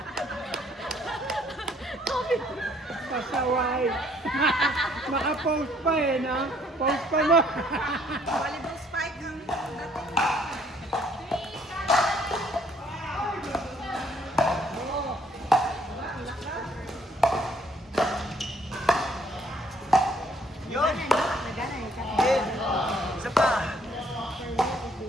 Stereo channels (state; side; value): normal; both; correlation 0.64